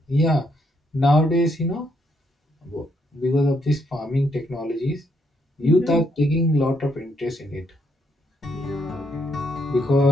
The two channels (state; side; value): normal; both; correlation 0.75